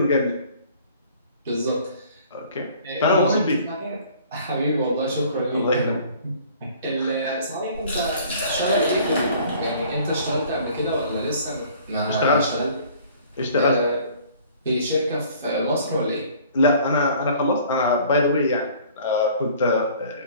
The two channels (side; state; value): both; inverted; correlation -0.52